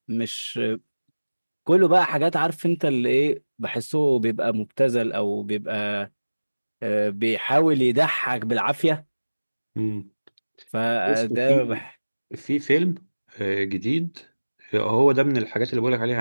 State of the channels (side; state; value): both; inverted; correlation -1.00